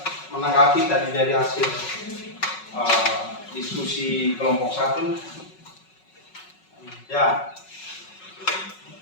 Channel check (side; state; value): right; late; 5.4 ms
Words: menanggapi tadi dari hasil diskusi kelompok 1? Ya.